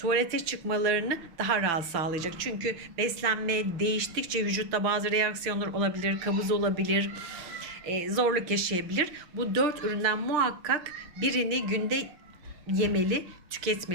çıkmalarını daha rahat sağlayacak. Çünkü beslenme değiştikçe vücutta bazı reaksiyonlar olabilir, kabız olabilir, zorluk yaşayabilir. Bu 4 üründen muhakkak birini günde yemeli,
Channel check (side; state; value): left; late; 5.9 ms